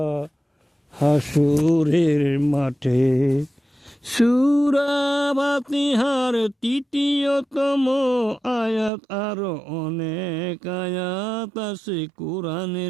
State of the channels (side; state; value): left; drops out; at 8.9 s